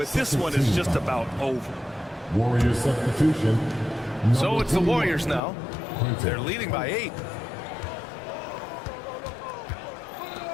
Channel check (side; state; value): right; drops out; at 5.4 s